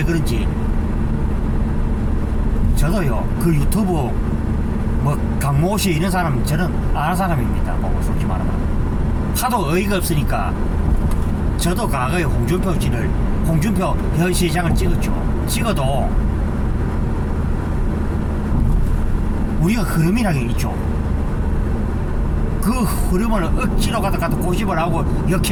그런지 저도요 그 유튜브 강모 씨 이런 사람 저는 아는 사람입니다. 솔직히 말하면 하도 어이가 없으니까 저도 과거에 홍준표 현 시장을 찍어도 우리가 흐름이라는 게 있죠. 그 흐름을 억지로 갖다 고집을 하고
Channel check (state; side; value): identical; both; correlation 1.00